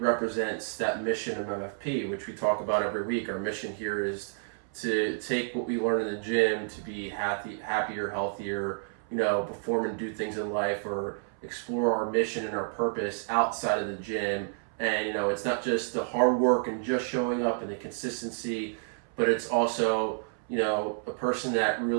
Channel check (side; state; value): left; silent; 58 dB below the other